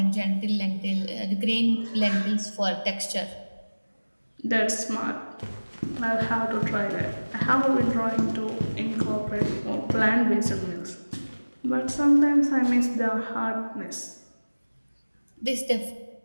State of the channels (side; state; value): both; inverted; correlation -1.00